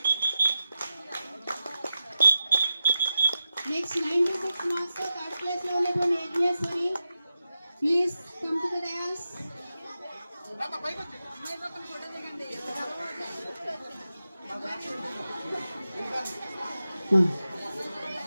Next 96 marks తో 3rd ప్లేస్ లో ఉన్నటువంటి Yagneshwari please come to the dais.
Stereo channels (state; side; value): inverted; both; correlation -0.91